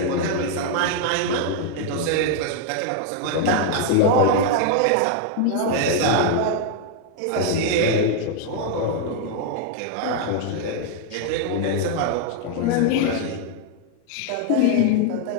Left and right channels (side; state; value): both; different; correlation 0.00